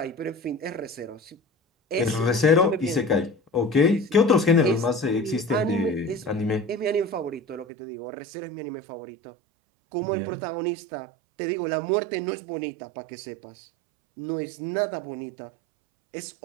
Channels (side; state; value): left; drops out; at 7.7 s